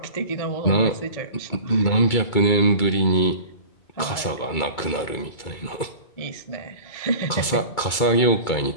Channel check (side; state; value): right; late; 2.3 ms